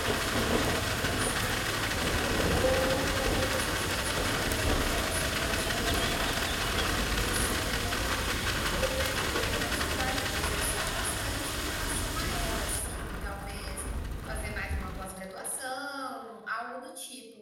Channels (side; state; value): both; identical; correlation 1.00